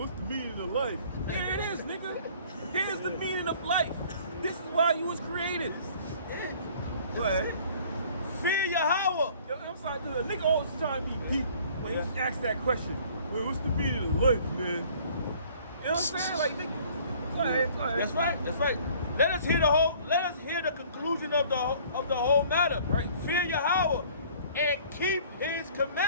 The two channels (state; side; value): inverted; both; correlation -0.53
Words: meaning of life? Here it is, nigga. Here's the meaning of life. This is why you was created. Go ahead. Fear Yahweh. Yo, I'm sorry, dude. A nigga always trying to be deep when he asks that question. Well, what's the meaning of life, man? You know what I'm saying? Like, nigga, go ahead. That's right. Let us hear the conclusion of the whole matter. Right. Fear Yahweh and keep his